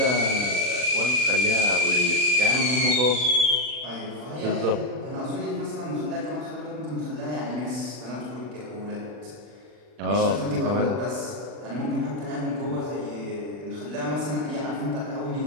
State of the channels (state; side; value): late; left; 40 ms